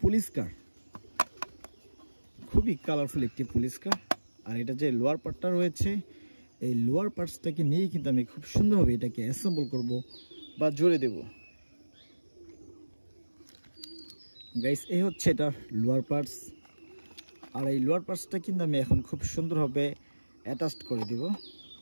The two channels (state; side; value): inverted; both; correlation -1.00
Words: পুলিশ কার, খুবই কালারফুল একটি পুলিশ কার। আর এটা যে লোয়ার পার্টটা রয়েছে, এই লোয়ার পার্টসটাকে নিয়েই কিন্তু আমি খুব সুন্দরভাবে এটাকে অ্যাসেম্বল করব বা জোড়ে দেব। গাইস এই হচ্ছে এটা লোয়ার পার্টস। আর এই লোয়ার পার্টসটা কিন্তু আমি এখন খুব সুন্দরভাবে অ্যাটাচড করে দেব।